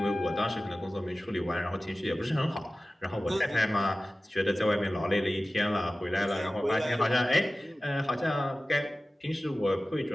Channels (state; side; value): normal; both; correlation 0.96